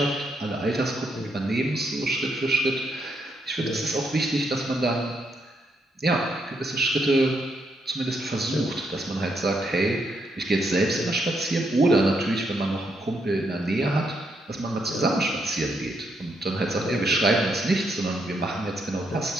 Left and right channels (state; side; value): normal; both; correlation 0.78